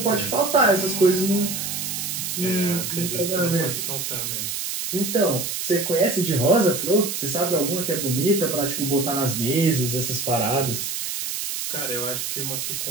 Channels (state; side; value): noise; right; hiss, 3 dB below the sound